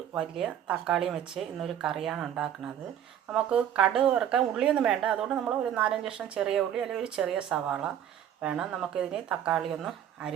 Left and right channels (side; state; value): left; quieter; 10.1 dB